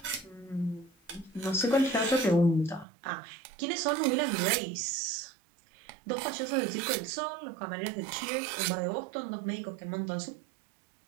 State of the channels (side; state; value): left; drops out; at 2.9 s